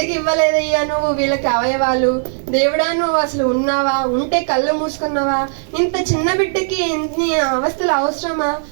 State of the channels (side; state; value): left; silent; 57 dB below the other